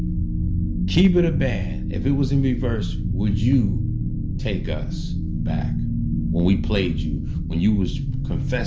Keep it a band. If it was in reverse, would you take us back when we played you, when you was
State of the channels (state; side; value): identical; both; correlation 1.00